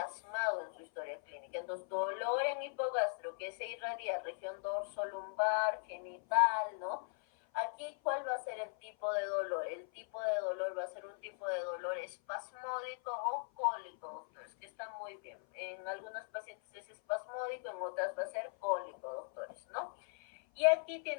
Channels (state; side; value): silent; right; 52 dB below the other